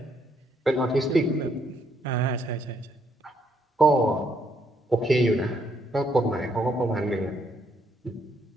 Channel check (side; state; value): both; normal; correlation 0.72